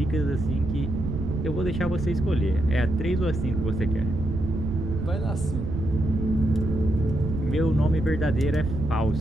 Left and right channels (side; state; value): right; noise; rumble, 4 dB below the sound